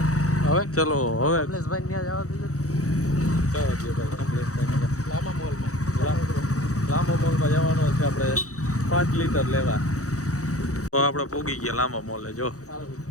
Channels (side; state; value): right; late; 0.65 ms